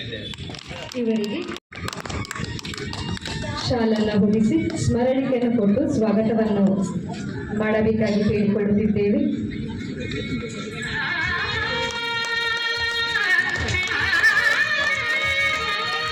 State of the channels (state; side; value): identical; both; correlation 1.00